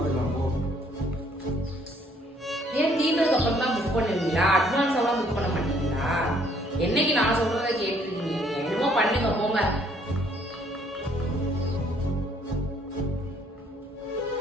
போ. ஏன் தீர்ந்ததுக்கு அப்புறம் தான் புக் பண்ணுவீங்களா? அட்வான்ஸ் எல்லாம் புக் பண்ண மாட்டீங்களா? என்னைக்கு நான் சொல்றதை கேட்டுருக்கீங்க? என்னமோ பண்ணுங்க போங்க.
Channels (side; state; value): both; normal; correlation 0.64